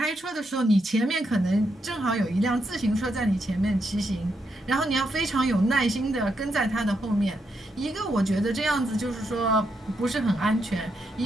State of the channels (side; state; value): both; normal; correlation 0.81